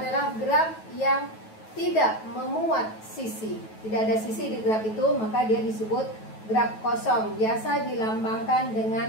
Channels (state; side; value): late; right; 9.2 ms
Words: graf yang tidak memuat sisi. Tidak ada sisi di graf itu, maka dia disebut graf kosong. Biasa dilambangkan